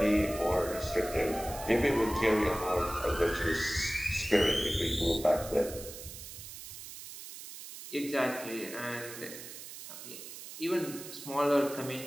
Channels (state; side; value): noise; right; hiss, 12 dB below the sound